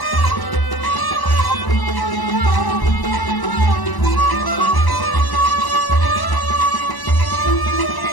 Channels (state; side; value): late; right; 1.0 ms